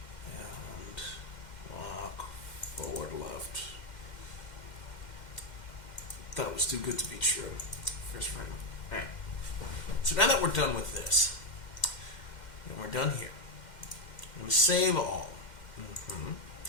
and walk forward left. That was too good to be true. First frame. Alright. So now that we're done with this, and we're done here, I'm going to save all. I'm going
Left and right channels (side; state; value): right; late; 2.1 ms